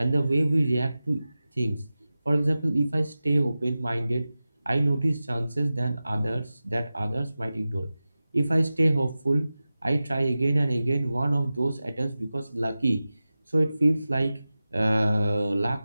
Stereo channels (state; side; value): inverted; both; correlation -0.96